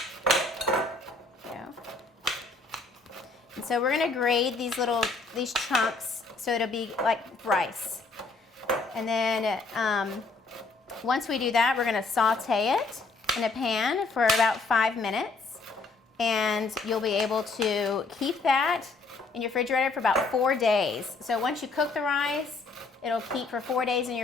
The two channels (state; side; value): quieter; right; 3.7 dB